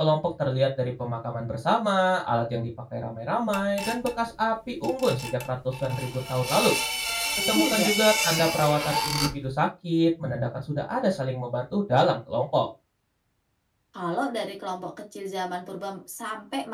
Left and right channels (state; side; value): identical; both; correlation 1.00